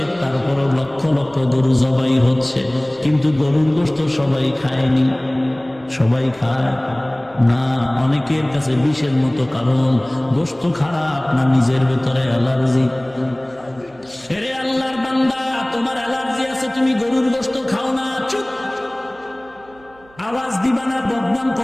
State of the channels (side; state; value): right; noise; hum, 28 dB below the sound